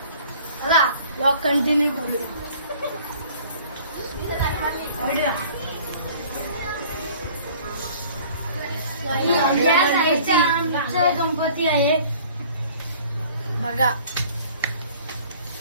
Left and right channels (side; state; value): both; inverted; correlation -0.50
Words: चला ब्लॉग कंटिन्यू करूया. या साईडचा आमचा गणपती आहे बघा.